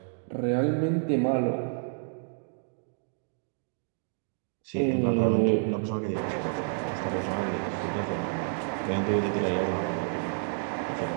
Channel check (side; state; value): left; silent; digital silence